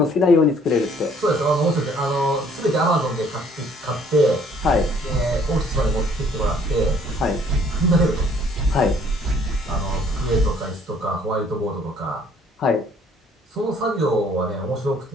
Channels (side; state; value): both; normal; correlation 0.60